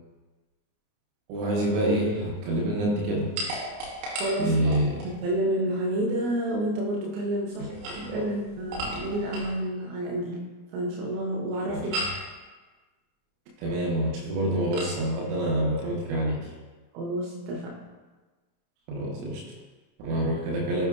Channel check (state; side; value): late; left; 29 ms